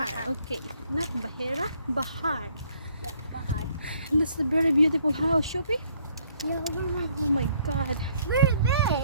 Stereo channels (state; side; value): inverted; both; correlation -0.65